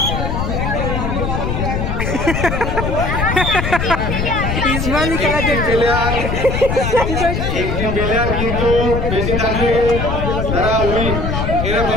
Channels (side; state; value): left; noise; rumble, 1 dB below the sound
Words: একটি প্লেয়ার কিন্তু বেশি থাকলে তারা উইন,